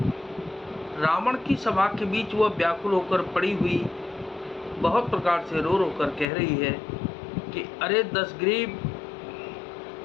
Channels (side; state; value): right; drops out; at 6.2 s